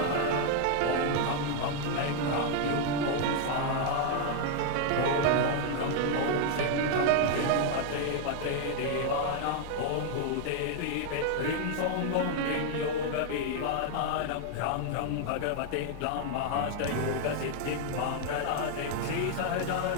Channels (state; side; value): different; both; correlation 0.00